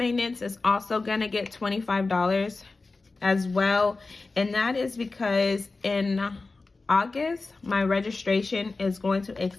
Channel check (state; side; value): quieter; right; 3.7 dB